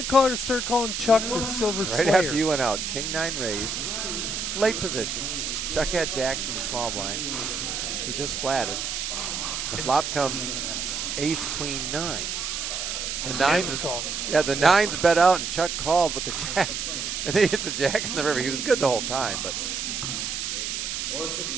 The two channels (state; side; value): noise; right; hiss, 3 dB below the sound